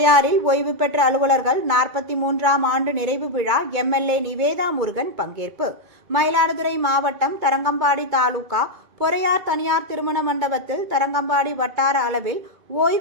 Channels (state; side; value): late; left; 2.2 ms